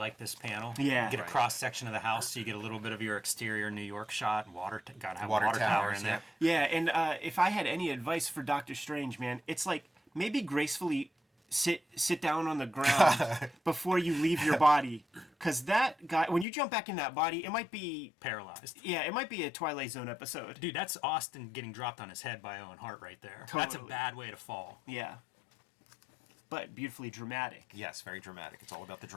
this panel. Yeah. You get a cross section of the house, so you get a little bit of your exterior New York shot. Gotta have a water tower towers, in there. Yeah, and if I had any advice for Doctor Strange, man, it's like maybe gracefully sit down on the ground before you leave your body, because that guy, when you jump back in that body, it might be Paralyzed. Yeah, it might be a Twilight Zone episode. Dude, that's Austin getting dropped on his head by Owen Hart right there. That's a Totally. bad way to fall. Yeah, but beautifully dramatic. Yes, very dramatic. It's all about the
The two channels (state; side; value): drops out; right; at 16.4 s